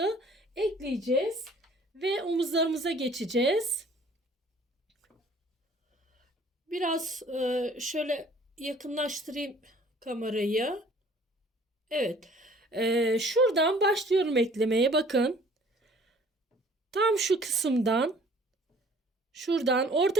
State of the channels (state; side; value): normal; both; correlation 0.54